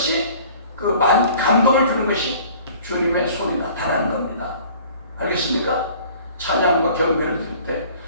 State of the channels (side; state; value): both; inverted; correlation -0.50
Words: 그 감동을 주는 것이 주님의 손이 나타나는 겁니다. 알겠습니까? 찬양과 경배를 드릴 때